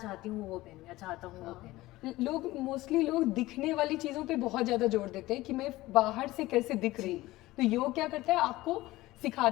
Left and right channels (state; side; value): quieter; right; 18.1 dB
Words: हूँ वो पहनूँ या चाहता हूँ वो पहनूँ। मोस्टली लोग दिखने वाली चीज़ों पे बहुत ज़्यादा जोर देते हैं कि मैं बाहर से कैसे दिख रही हूँ। तो योग क्या करता है, आपको